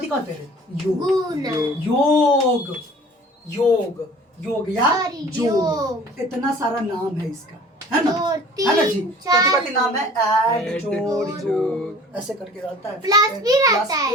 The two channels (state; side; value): normal; both; correlation 0.47